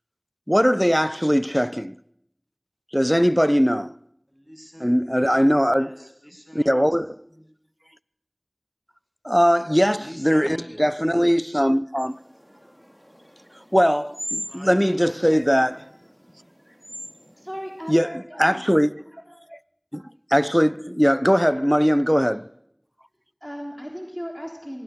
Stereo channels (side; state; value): both; identical; correlation 1.00